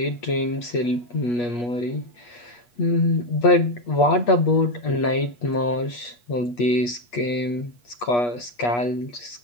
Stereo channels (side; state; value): right; late; 8.3 ms